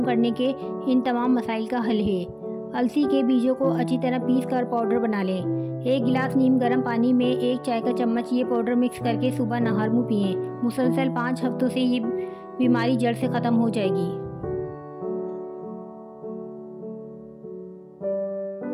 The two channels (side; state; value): both; identical; correlation 1.00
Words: करने के इन तमाम मसाइल का हल है। अलसी के बीजों को अच्छी तरह पीस कर पाउडर बना लें। 1 गिलास नीम गर्म पानी में 1 चाय का चम्मच ये पाउडर मिक्स करके सुबह नहर मुँह पिएँ। मुसलसल 5 हफ्तों से ये बीमारी जड़ से ख़त्म हो जाएगी।